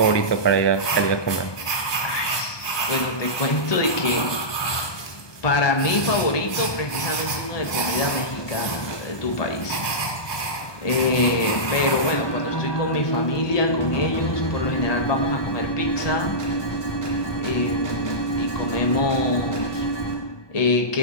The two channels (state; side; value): late; right; 1.2 ms